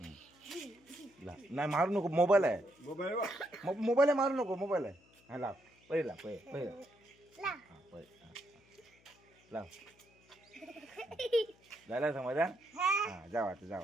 नाही मारू नको. मोबाईल आहे. मोबाईल आहे. मारू नको. मोबाईल आहे. हा लाव. पहिले लाव. पहिले हां पहिले लाव. झालं समजा. हां जावा आता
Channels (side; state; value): left; noise; hum, 30 dB below the sound